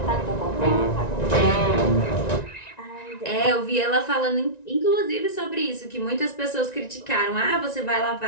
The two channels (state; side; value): late; right; 1.9 ms